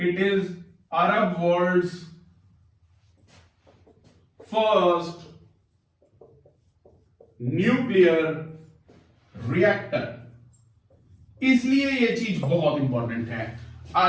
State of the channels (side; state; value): both; identical; correlation 1.00